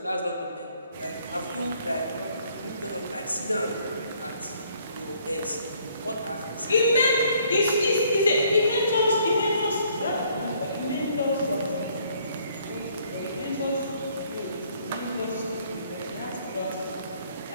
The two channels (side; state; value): both; inverted; correlation -0.64